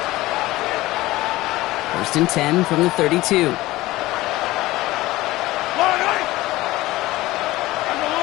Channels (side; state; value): right; quieter; 18.0 dB